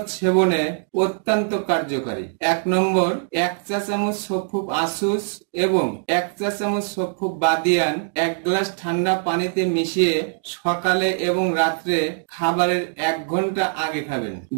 সেবনে অত্যন্ত কার্যকারী। 1 নম্বর, 1 চা চামচ সফুক আসুস এবং 1 চা চামচ সফুক বাদিয়ান 1 গ্লাস ঠান্ডা পানিতে মিশিয়ে সকালে এবং রাত্রে খাবারের 1 ঘন্টা আগে খাবেন।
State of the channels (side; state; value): left; silent; 64 dB below the other